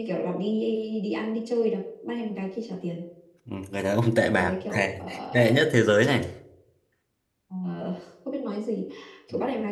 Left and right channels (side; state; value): both; identical; correlation 1.00